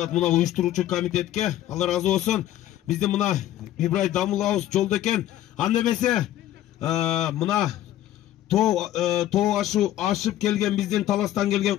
мына уюштуруучу комитетке. Алла разы болсун. Биздин мына Ибрай дамылабыз жолдо экен. Анда эмесе мына тоо ашып келген биздин Таластан келген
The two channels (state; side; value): quieter; right; 13.1 dB